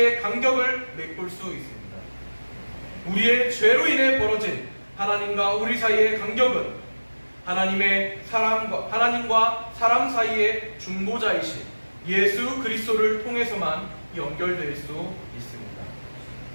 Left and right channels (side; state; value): both; inverted; correlation -1.00